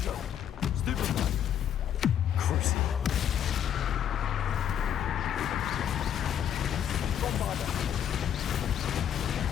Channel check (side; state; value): right; quieter; 9.5 dB